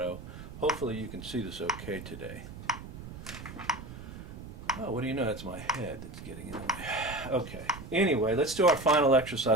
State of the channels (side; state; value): right; noise; rumble, 12 dB below the sound